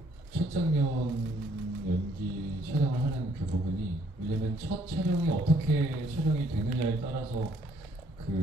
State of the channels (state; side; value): normal; both; correlation 0.65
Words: 첫 장면 연기 촬영을 하는 그 부분이, 왜냐면 첫 촬영이 어떻게 촬영이 되느냐에 따라서